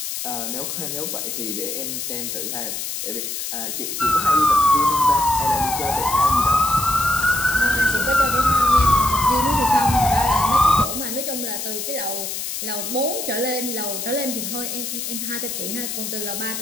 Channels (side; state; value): left; noise; hiss, 5 dB below the sound